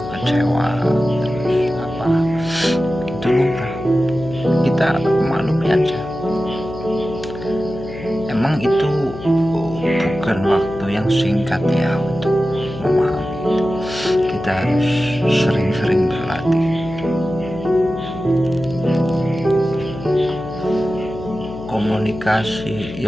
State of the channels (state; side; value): noise; left; hum, 13 dB below the sound